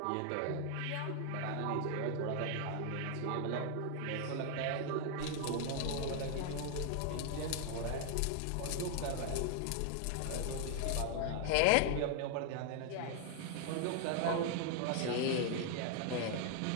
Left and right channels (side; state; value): both; different; correlation 0.00